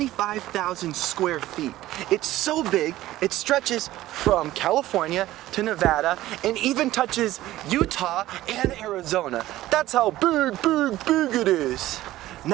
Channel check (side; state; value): left; quieter; 15.5 dB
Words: square feet. It's so big, it stretches from California to Nevada and even touches Utah and Arizona. That's how big it is.